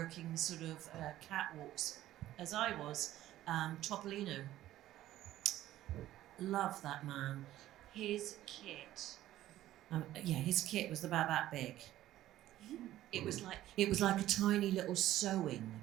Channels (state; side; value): quieter; left; 14.1 dB